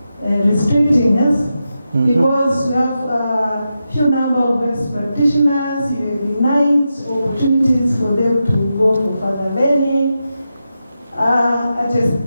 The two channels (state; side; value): inverted; both; correlation -0.89